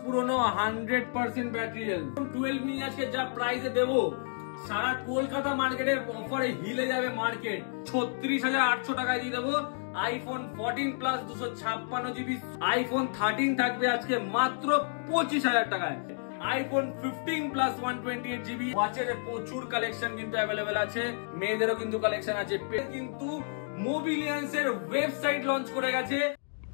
পুরনো 100% battery health 12 mini আজকে যা প্রাইসে দেবো সারা কলকাতা মার্কেটের অফারে হিলে যাবে মার্কেট। 36,800 টাকায় দিয়ে দেবো আইফোন 14 প্লাস 256 জিবি। আইফোন 13 থাকবে আজকে মাত্র 25,000 টাকায়। IPhone 15 plus 128 GB. ওয়াচের প্রচুর কালেকশন কিন্তু অ্যাভেলেবেল আছে, মেয়েদেরও কিন্তু কালেকশন আছে। কিন্তু মোবিলিয়ান্স এর ওয়েবসাইট লঞ্চ করে গেছে।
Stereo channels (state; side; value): silent; right; digital silence